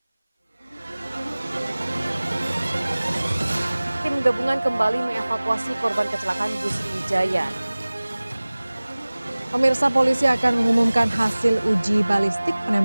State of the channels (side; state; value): both; inverted; correlation -0.99